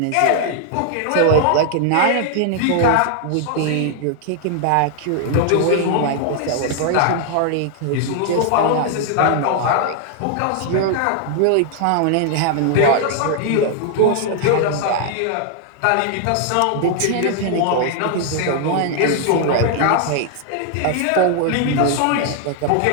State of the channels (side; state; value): both; different; correlation 0.00